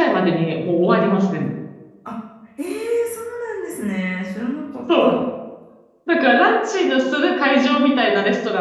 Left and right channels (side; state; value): both; identical; correlation 1.00